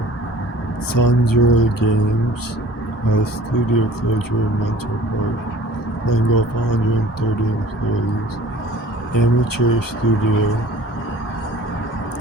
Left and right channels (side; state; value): both; normal; correlation 0.48